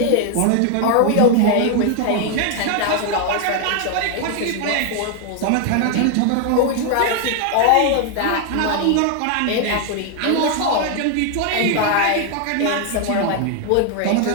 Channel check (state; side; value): different; both; correlation 0.00